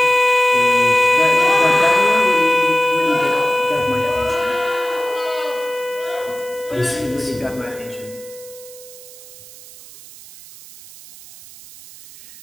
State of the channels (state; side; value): noise; right; hiss, 19 dB below the sound